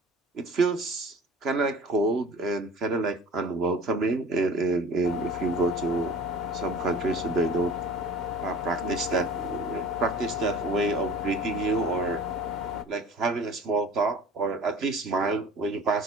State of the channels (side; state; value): both; normal; correlation 0.43